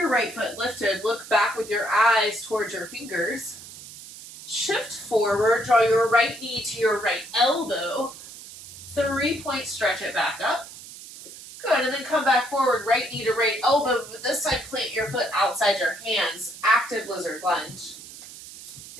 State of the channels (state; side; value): noise; right; hiss, 15 dB below the sound